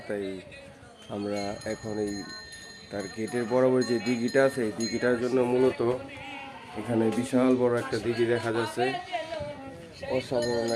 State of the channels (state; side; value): identical; both; correlation 1.00